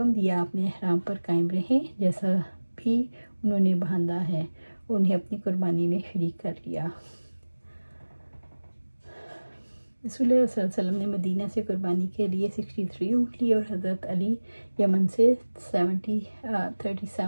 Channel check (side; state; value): both; inverted; correlation -1.00